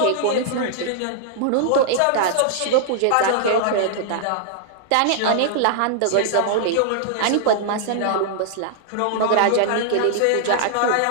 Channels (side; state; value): both; different; correlation -0.01